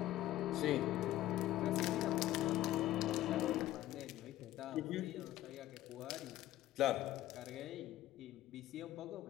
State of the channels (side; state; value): right; quieter; 14.5 dB